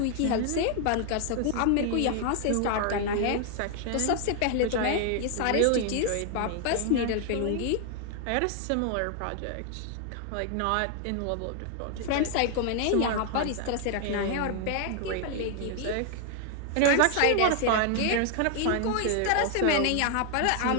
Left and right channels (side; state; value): both; different; correlation 0.00